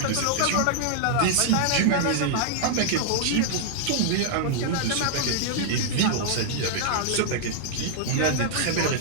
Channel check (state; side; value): different; both; correlation -0.01